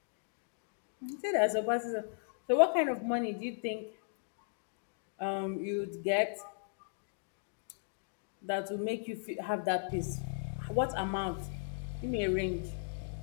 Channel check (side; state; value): right; silent; digital silence